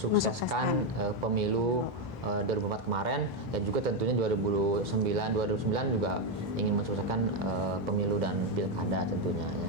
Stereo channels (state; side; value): normal; both; correlation 0.05